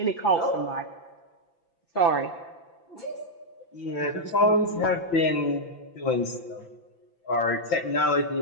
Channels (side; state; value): right; late; 6.0 ms